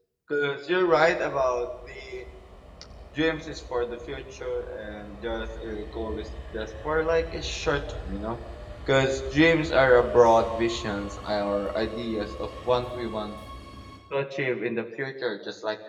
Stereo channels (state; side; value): identical; both; correlation 1.00